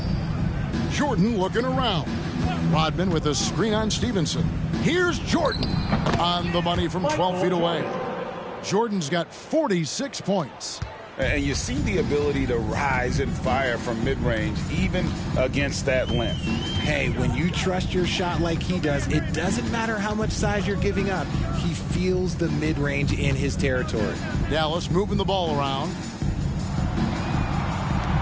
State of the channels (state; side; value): identical; both; correlation 1.00